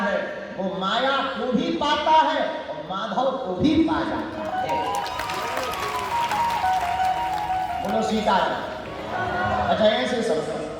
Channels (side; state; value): both; identical; correlation 1.00